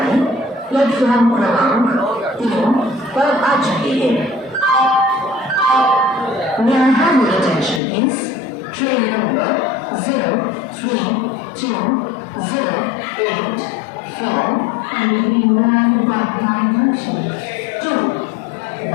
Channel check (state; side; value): drops out; right; at 7.8 s